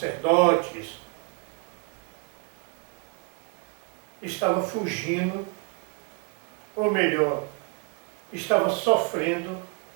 estava fugindo, ou melhor, estava sofrendo,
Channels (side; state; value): left; quieter; 30.0 dB